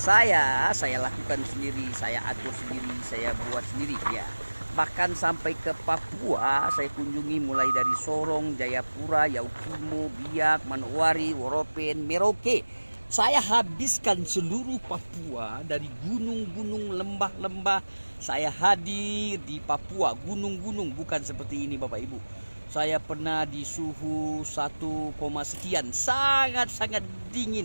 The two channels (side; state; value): both; inverted; correlation -1.00